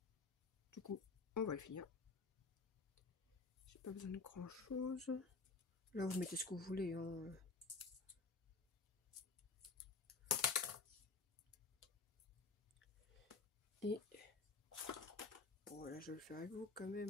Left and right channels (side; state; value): right; quieter; 4.1 dB